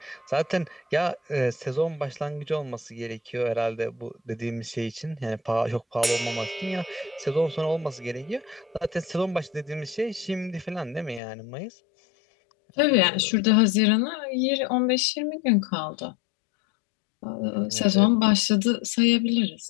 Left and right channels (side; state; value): right; drops out; at 11.2 s